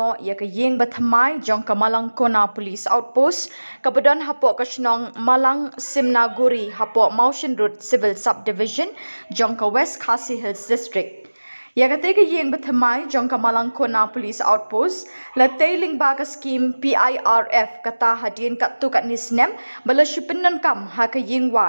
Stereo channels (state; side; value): inverted; both; correlation -1.00